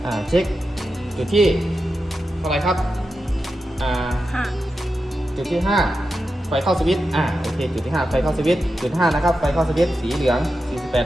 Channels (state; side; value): normal; both; correlation 0.90